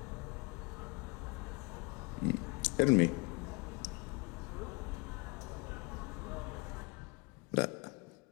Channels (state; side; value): quieter; right; 28.5 dB